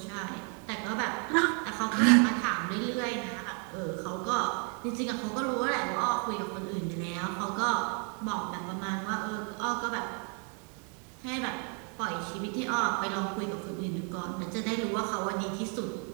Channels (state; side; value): quieter; left; 39.3 dB